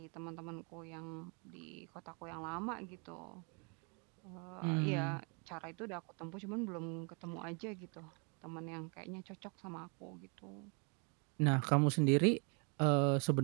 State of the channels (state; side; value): quieter; left; 35.3 dB